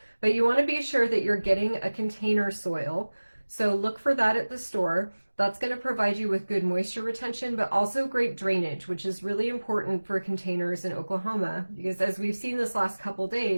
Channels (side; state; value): both; inverted; correlation -1.00